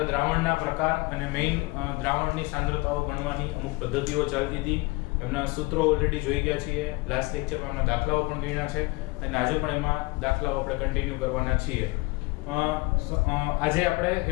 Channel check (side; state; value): right; quieter; 24.1 dB